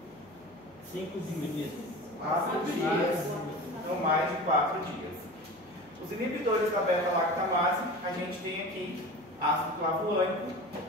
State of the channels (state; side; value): noise; left; hum, 29 dB below the sound